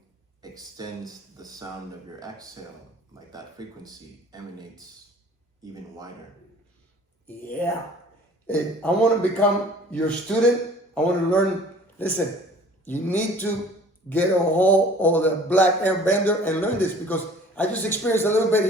extends the sound of your exhale, like that frequency emanates even wider. Yeah. I want to become your student. I want to learn. Listen, you need to get a hold of the Black Aire Bender and learn this, because I just experienced a little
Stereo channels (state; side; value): normal; both; correlation 0.49